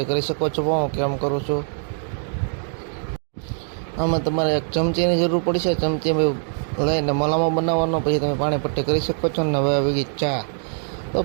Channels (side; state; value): left; silent; 63 dB below the other